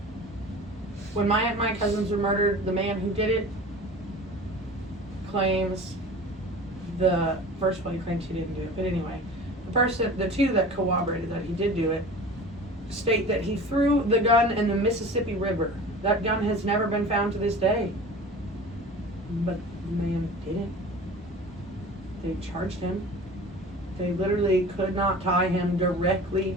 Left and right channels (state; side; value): normal; both; correlation 0.39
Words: When my cousins were murdered, the man who did it claims first one he claims he didn't do it, but anyway, the two that corroborated that he did do it state that he threw the gun in the Mississippi River. That gun has never been found to this day. But the man didn't. They charged him. They literally could not tie him directly